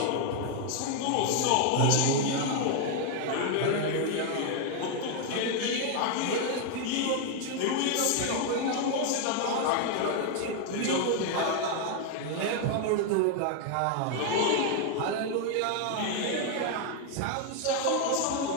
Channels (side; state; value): both; different; correlation 0.01